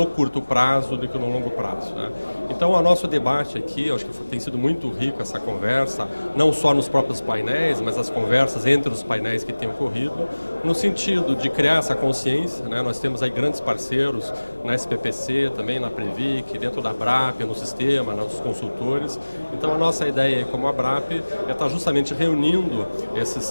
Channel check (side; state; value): both; inverted; correlation -1.00